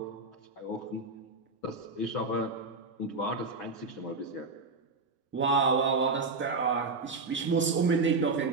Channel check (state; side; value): quieter; left; 3.8 dB